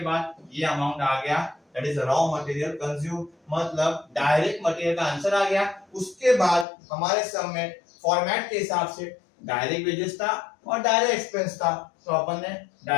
बाद ये अमाउंट आ गया, that is raw material consume, मतलब डायरेक्ट मटेरियल का आंसर आ गया। उसके बाद हमारे सब में फॉर्मेट के हिसाब से डायरेक्ट वेजेस था और डायरेक्ट एक्सपेंस था, तो अपन ने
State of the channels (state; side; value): drops out; right; at 6.7 s